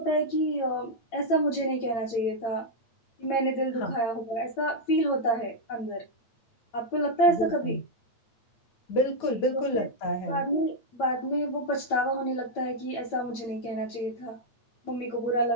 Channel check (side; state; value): right; late; 8.8 ms